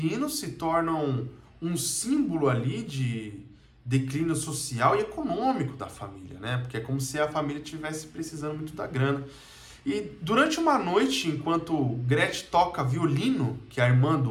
se tornam um símbolo ali de declínio social e econômico da família, né? Porque é como se a família estivesse precisando muito da grana. E durante uma noite, enquanto Gretchen toca violino, que é a irmã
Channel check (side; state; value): both; identical; correlation 1.00